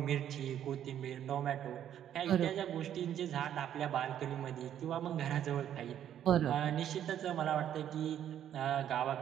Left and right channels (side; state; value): left; quieter; 10.4 dB